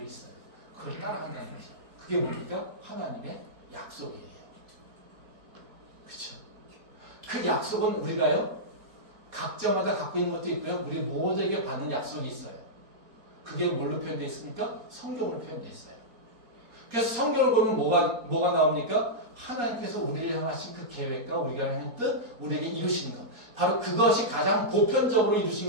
있어요. 그걸 따라간다는 거죠. 그게 뭡니까? 하나님의 약속이에요. 그렇죠? 그 약속은 우리가요, 각자마다 갖고 있는 것도 있고요. 우리 모두에게 받는 약속이 있어요. 그게 뭘로 표현되어 있습니까? 성경으로 표현되어 있어요. 그래서 성경을 보면 뭐가 나옵니까? 하나님께서 우리를 향하신 그 계획과 우리가 하는 뜻, 우리에게 이루시는 것. 바로 그것이 가장 보편적으로 이루신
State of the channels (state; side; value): late; left; 4.2 ms